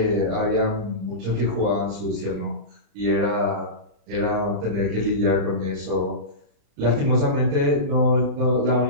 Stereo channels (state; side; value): late; left; 35 ms